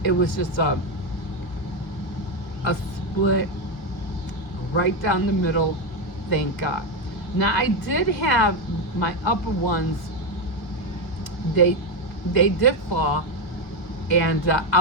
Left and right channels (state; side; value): late; right; 2.1 ms